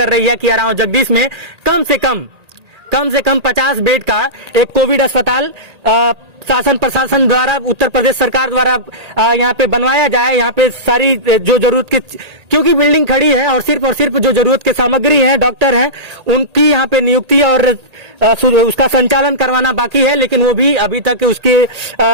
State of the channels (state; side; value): late; left; 1.8 ms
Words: रही है कि आराव जगदीश में कम से कम 50 बेड का एक कोविड अस्पताल शासन प्रशासन द्वारा, उत्तर प्रदेश सरकार द्वारा यहाँ पे बनवाया जाए। यहाँ पे सारी जो जरूरत की, क्योंकि बिल्डिंग खड़ी है और सिर्फ जो जरूरत की सामग्री है, डॉक्टर हैं, उनकी यहाँ पे नियुक्ति और उसका संचालन करवाना बाकी है। लेकिन वो भी अभी तक उसके